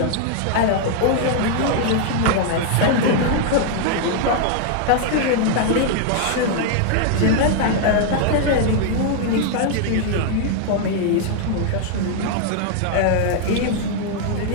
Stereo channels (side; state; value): both; different; correlation 0.00